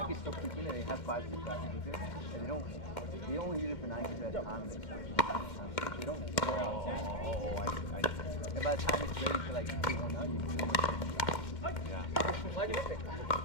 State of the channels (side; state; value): right; late; 2.2 ms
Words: so quickly that they have 5 6 rackets with it. And they only use it for 9 games at a time. They don't wear out. I see. And by the time it's ready to like do one out, you can Yeah. Why do you pick?